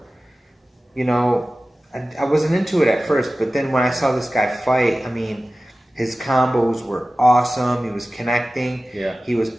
I wasn't into it at first, but then when I saw this guy fight, his combos were awesome. He was connecting. Yeah. He was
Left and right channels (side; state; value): both; normal; correlation 0.96